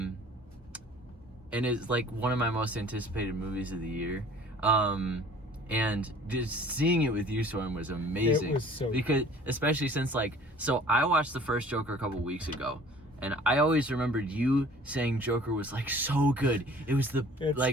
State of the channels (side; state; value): both; normal; correlation 0.50